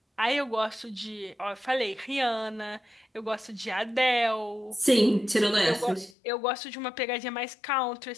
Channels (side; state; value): right; drops out; at 6.1 s